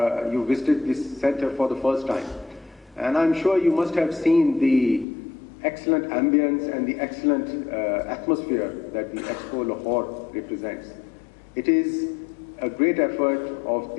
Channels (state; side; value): drops out; right; at 5.1 s